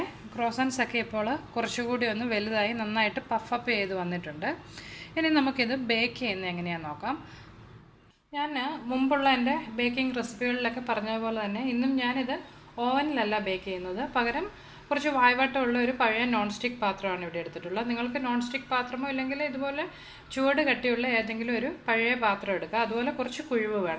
ക്രോസൻസൊക്കെ ഇപ്പോൾ കുറച്ചുകൂടി ഒന്ന് വലുതായി നന്നായിട്ട് പഫപ്പ് ചെയ്ത് വന്നിട്ടുണ്ട്. ഇനി നമുക്കിത് ബേക്ക് ചെയ്യുന്നത് എങ്ങനെയാണെന്ന് നോക്കാം. ഞാൻ മുമ്പുള്ള എൻ്റെ ബേക്കിംഗ് റെസിപ്പികളിലൊക്കെ പറഞ്ഞതുപോലെ തന്നെ ഇന്നും ഞാനിത് ഓവനിലല്ല ബേക്ക് ചെയ്യുന്നത്. പകരം കുറച്ച് വായ്വാട്ടമുള്ള ഒരു പഴയ നോൺ സ്റ്റിക്ക് പാത്രമാണ് ഇവിടെ എടുത്തിട്ടുള്ളത്. നിങ്ങൾക്ക് നോൺ സ്റ്റിക്ക് പാത്രമോ ഇല്ലെങ്കിൽ ഇതുപോലെ ചുവട് കട്ടിയുള്ള ഏതെങ്കിലും ഒരു പഴയ പാത്രം എടുക്കുക. അതുപോലെ കുറച്ച് കുഴിവ്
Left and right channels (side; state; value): both; identical; correlation 1.00